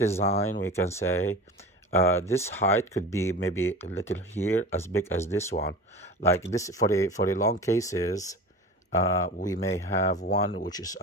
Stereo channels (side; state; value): both; normal; correlation 0.34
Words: we can say this height could be maybe a little here, as big as this one. Like this, for the long cases, we may have one which is